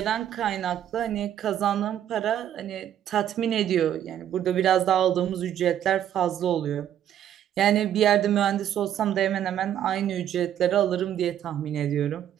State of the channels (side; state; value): left; quieter; 10.6 dB